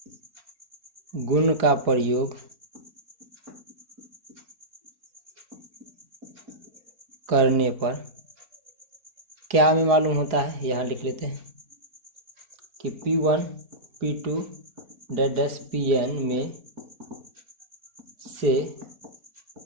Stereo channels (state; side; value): late; left; 4.8 ms